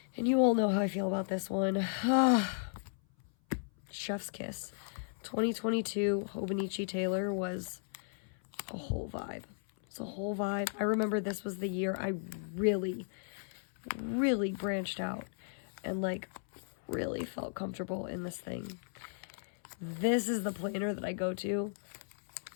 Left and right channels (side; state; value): right; silent; 54 dB below the other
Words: And you all know how I feel about this one. Chef's kiss. 2022 Hobonichi Taylor was a whole vibe. It's a whole vibe. I remember this was the year I really, really branched out and like really felt comfortable in this thing. This is the planner that I go to